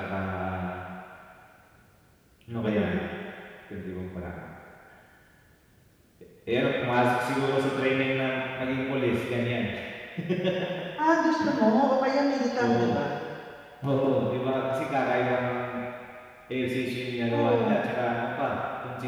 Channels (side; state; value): both; identical; correlation 1.00